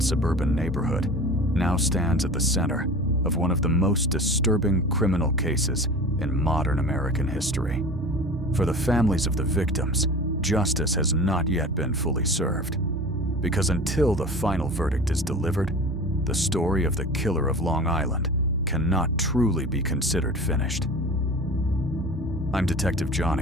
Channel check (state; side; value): normal; both; correlation 0.37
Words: suburban neighborhood now stands at the center of one of the most disturbing criminal cases in modern American history. For the families of the victims, justice has not yet been fully served, because until the final verdict is delivered, the story of the killer of Long Island cannot truly be considered finished. I'm Detective